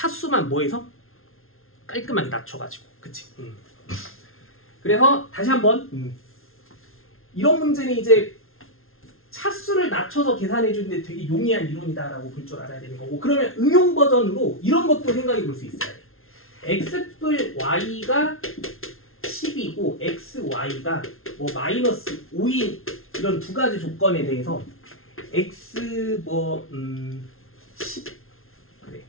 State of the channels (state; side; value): late; right; 0.61 ms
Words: 뭐해서 깔끔하게 낮춰가지고, 그치? 그래서 다시 한번 이런 문제는 이제 차수를 낮춰서 계산해 주는데 되게 용이한 이론이다라고 볼 줄 알아야 되는 거고, 그러면 응용 버전으로 이런 것도 생각해 볼 수 있어요. x뿔 y가 10이고 xy가 뭐 마이너스 5인 이런 두 가지 조건에 대해서 x 10 그래